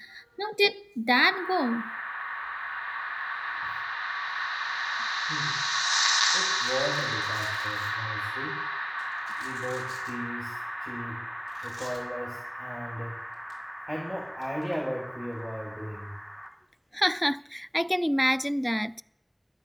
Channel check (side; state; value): both; identical; correlation 1.00